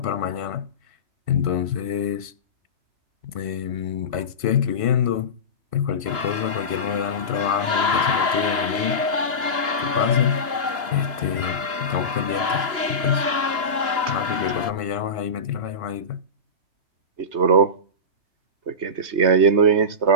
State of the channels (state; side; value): late; left; 2.9 ms